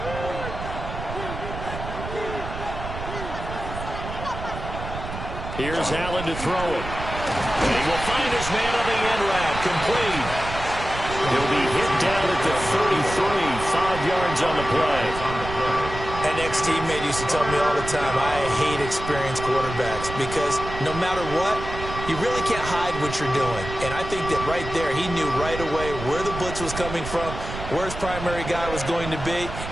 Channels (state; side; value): noise; right; rumble, 8 dB below the sound